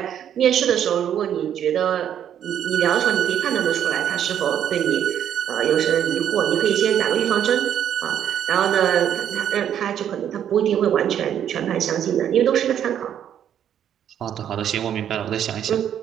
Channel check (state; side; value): quieter; left; 9.7 dB